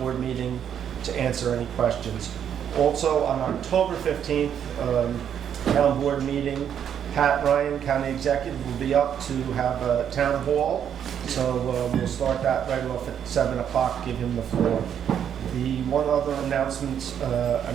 meeting to answer any questions. Also, on October 15th, town board meeting, Pat Ryan, County Executive, will be up to have a town hall. So we'll start that right off at 7 o'clock, give him the floor. The one other announcement,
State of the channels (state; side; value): quieter; left; 8.9 dB